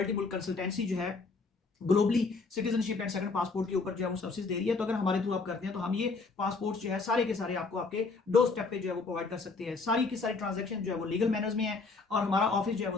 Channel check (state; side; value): quieter; right; 4.1 dB